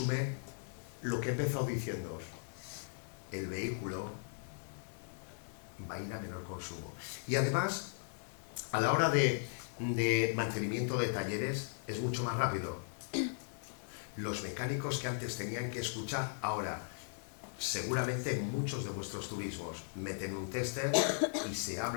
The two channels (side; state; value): right; silent; 53 dB below the other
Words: lo que he empezado diciendo. El vehículo va a ir a menor consumo. Y además, a la hora de mantenimiento de talleres, es mucho más rápido. Los mecánicos que antes tenían que escuchar, ahora, seguramente en muchos de vuestros turismos meten un tester y se